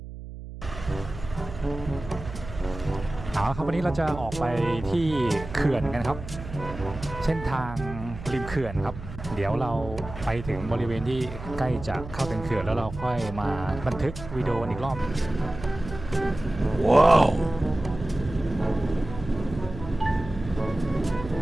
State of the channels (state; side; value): noise; right; hum, 12 dB below the sound